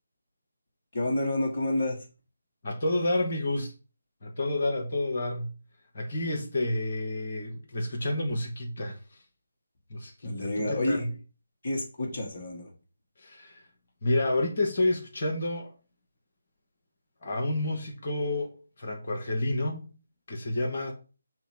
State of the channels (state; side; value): inverted; both; correlation -0.87